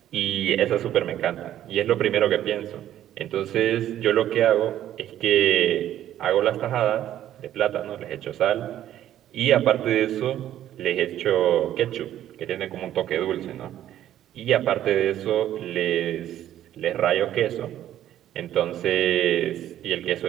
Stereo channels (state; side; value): quieter; left; 12.0 dB